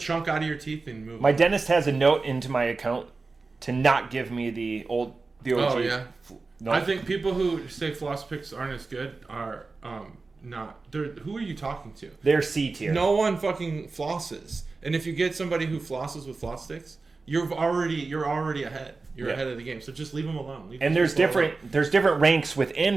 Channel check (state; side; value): quieter; left; 3.9 dB